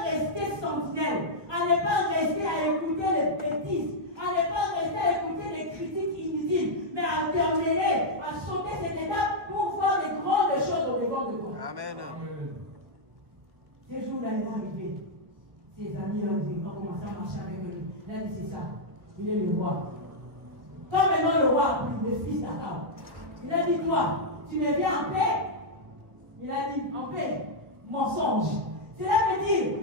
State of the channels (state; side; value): late; left; 1.6 ms